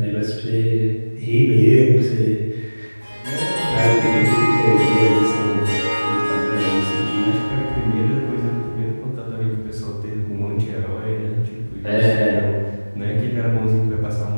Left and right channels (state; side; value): inverted; both; correlation -1.00